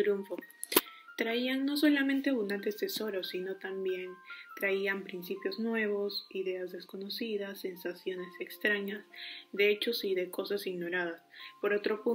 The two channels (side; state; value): both; identical; correlation 1.00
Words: Traían no solamente abundantes tesoros, sino también traían principios nuevos, ideas desconocidas, sensaciones extrañas, de hechos y de cosas ignoradas. Por otro